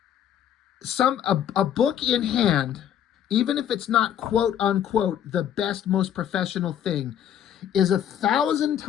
a book in hand, even if it's not quote unquote the best, most professional thing, is 1,000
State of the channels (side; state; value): right; quieter; 10.0 dB